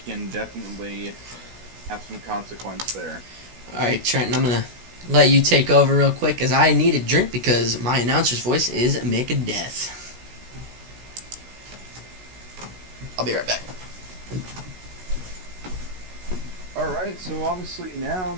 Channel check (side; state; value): left; late; 16 ms